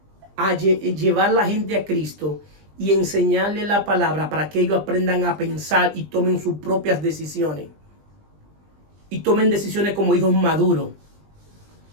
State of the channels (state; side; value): late; left; 20 ms